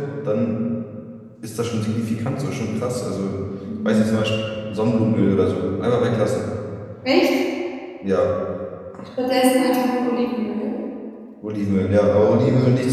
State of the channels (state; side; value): identical; both; correlation 1.00